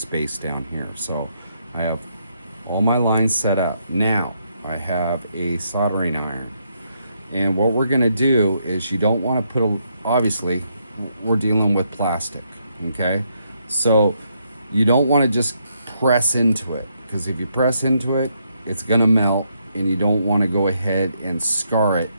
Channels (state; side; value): inverted; both; correlation -0.76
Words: down here. So I have all my lines set up. Now I have a soldering iron, and what we're going to do is, you don't want to put obviously we're dealing with plastic, okay? So you don't want to just press into it, because if you press into it, it's going to melt, and you don't want to go ahead and scar it